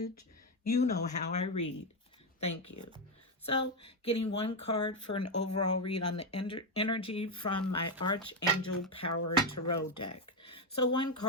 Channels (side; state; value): both; normal; correlation 0.06